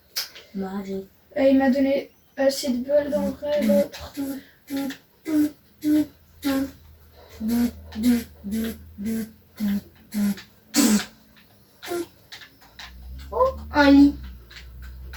Magique. Il m'a donné assez de balles dans le vrai l'autre. Oh, un lit.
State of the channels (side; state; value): both; identical; correlation 1.00